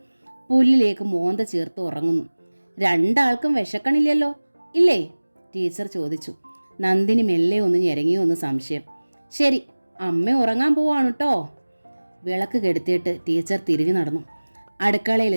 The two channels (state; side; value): inverted; both; correlation -1.00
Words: പുല്ലിലേക്ക് മോന്ത ചേർത്ത് ഉറങ്ങുന്നു. രണ്ടാൾക്കും വിശക്കണില്ലല്ലോ ഇല്ലേ? ടീച്ചർ ചോദിച്ചു. നന്ദിനി മെല്ലെ ഒന്ന് ഞെരങ്ങിയോ ഒന്ന് സംശയം. ശരി, അമ്മ ഉറങ്ങാൻ പോവാണ് കേട്ടോ. വിളക്ക് കെടുത്തിയിട്ട് ടീച്ചർ തിരിഞ്ഞു നടന്നു.